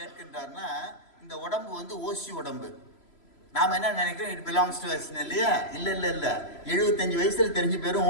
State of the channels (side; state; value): right; late; 3.0 ms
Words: கேட்கின்றார்னா இந்த உடம்பு வந்து ஓசி உடம்பு. நாம என்ன நினைக்கிறோம், இட் பிலாங்ஸ் டு அஸ் இல்லையா? இல்ல இல்ல இல்ல, 75 வயசுல தெரிஞ்சு பேரும்